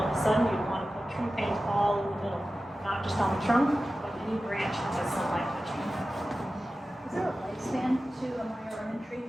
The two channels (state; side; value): normal; both; correlation 0.94